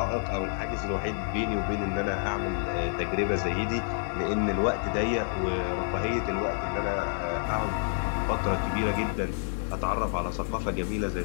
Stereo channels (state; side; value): silent; right; digital silence